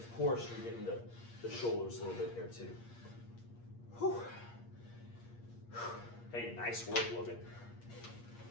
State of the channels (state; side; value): late; right; 8.5 ms